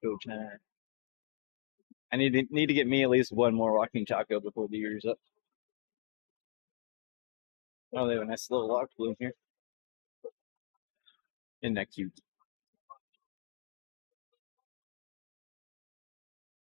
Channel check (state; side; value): silent; right; digital silence